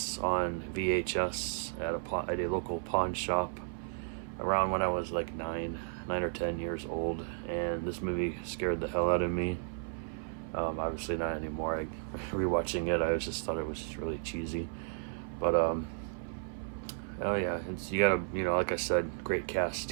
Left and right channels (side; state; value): left; silent; 55 dB below the other